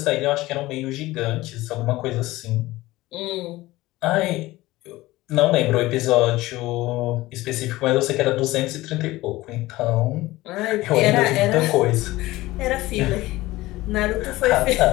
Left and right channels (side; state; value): right; quieter; 18.4 dB